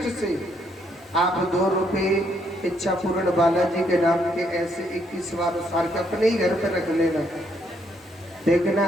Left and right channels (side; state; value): both; normal; correlation 0.72